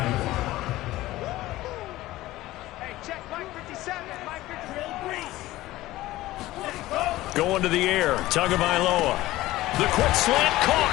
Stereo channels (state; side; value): quieter; right; 16.9 dB